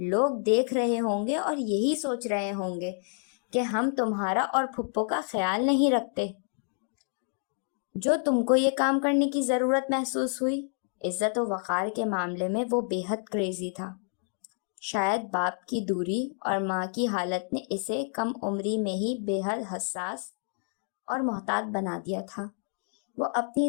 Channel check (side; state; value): right; silent; 56 dB below the other